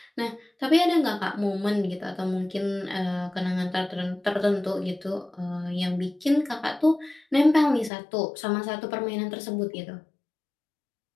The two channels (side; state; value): right; drops out; at 7.9 s